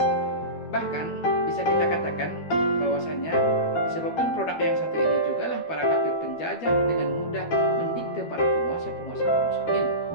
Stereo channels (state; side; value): late; right; 12 ms